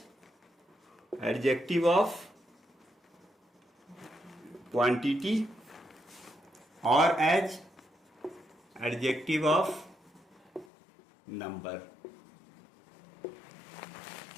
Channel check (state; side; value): drops out; right; at 10.7 s